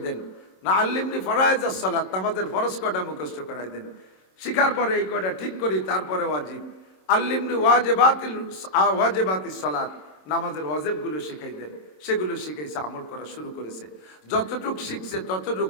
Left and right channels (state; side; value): late; right; 26 ms